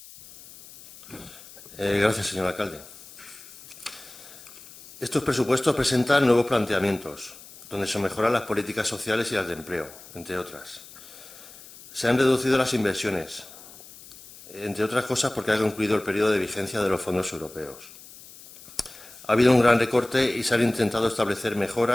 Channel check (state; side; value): noise; left; hiss, 19 dB below the sound